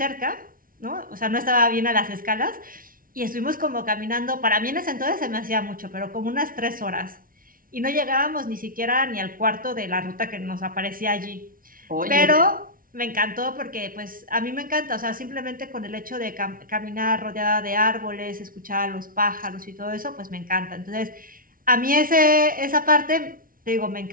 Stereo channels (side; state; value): left; late; 0.41 ms